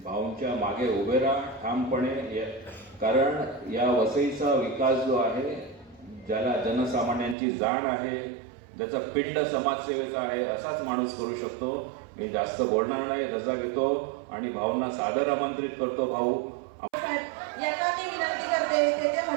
भाऊंच्या मागे उभे राहा ठामपणे. कारण या वसईचा विकास जो आहे, ज्याला जनसामान्यांची जाण आहे, ज्याचा पिंड समाजसेवेचा आहे, असाच माणूस करू शकतो. मी जास्त बोलणार नाही, रजा घेतो आणि भाऊंना सादर आमंत्रित करतो. भाऊ यांना मी विनंती करते तेथे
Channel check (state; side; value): drops out; left; at 7.4 s